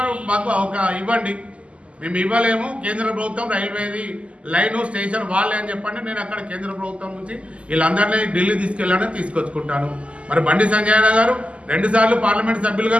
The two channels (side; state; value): left; late; 0.058 ms